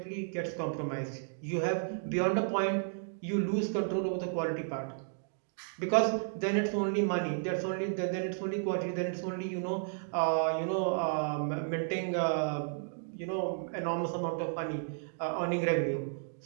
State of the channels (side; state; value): left; silent; digital silence